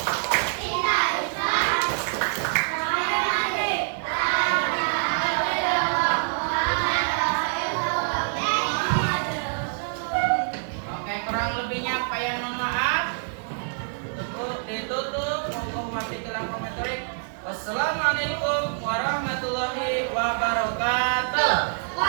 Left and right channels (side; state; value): left; silent; digital silence